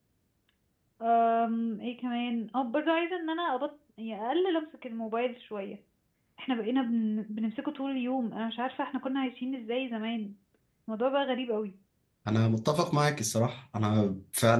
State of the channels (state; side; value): identical; both; correlation 1.00